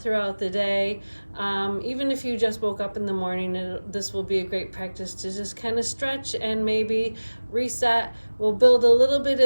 throughout the day. Even if you just woke up in the morning, this will be a great practice to just kind of stretch and maybe reset. We'll build a little bit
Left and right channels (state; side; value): inverted; both; correlation -1.00